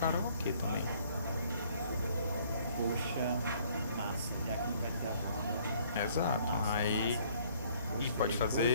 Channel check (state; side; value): inverted; both; correlation -0.60